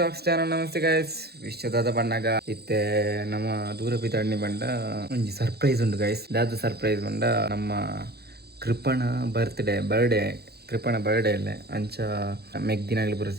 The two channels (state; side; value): late; left; 0.46 ms